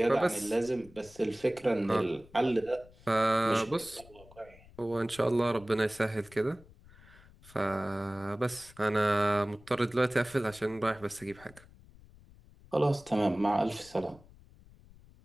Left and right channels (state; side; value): noise; left; rumble, 23 dB below the sound